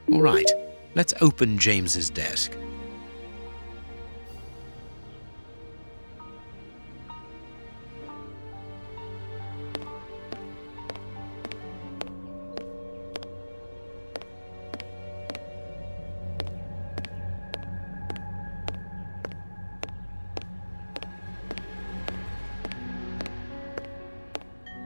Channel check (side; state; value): both; inverted; correlation -1.00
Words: All right, let's open James's desk.